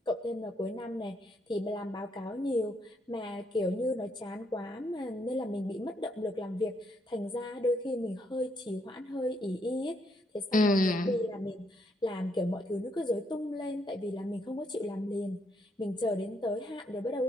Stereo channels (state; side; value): normal; both; correlation 0.74